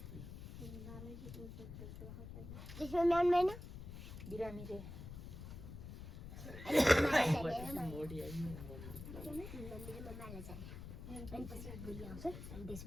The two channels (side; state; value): left; noise; rumble, 10 dB below the sound